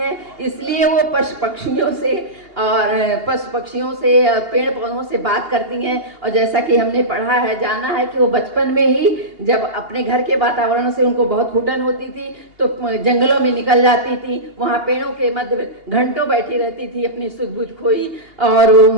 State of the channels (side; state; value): left; late; 2.8 ms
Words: इसलिए वो पशु पक्षियों से पेड़ पौधों से बात करती हैं। और जैसा कि हमने पढ़ा है, जाना है कि वो बचपन में ही जब अपने घर के वातावरण से उनको बहुत घुटन होती थी तो जंगलों में निकल जाती थी, वहाँ पेड़ों के मध्य घंटों बैठी रहती थी, अपनी सुध बुध खोई और